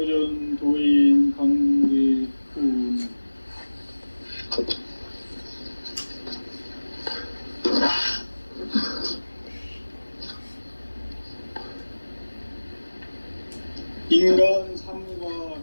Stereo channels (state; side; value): inverted; both; correlation -1.00